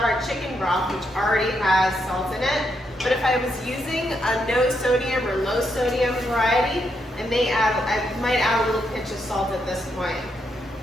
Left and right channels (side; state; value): both; normal; correlation 0.79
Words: our chicken broth, which already has salt in it. But if I was using a no sodium or low sodium variety, I might add a little pinch of salt at this point.